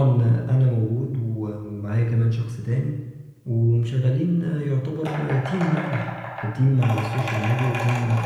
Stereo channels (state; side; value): identical; both; correlation 1.00